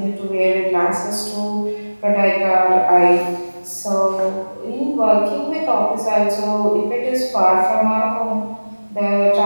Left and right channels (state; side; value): inverted; both; correlation -1.00